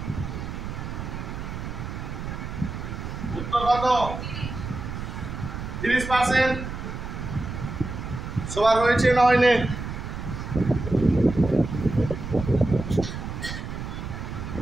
উত্তর কত? 30%। সবার হয়েছে না হয়নি?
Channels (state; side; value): noise; right; rumble, 7 dB below the sound